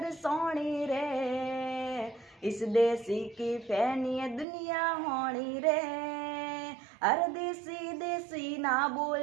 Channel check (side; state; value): left; drops out; at 4.5 s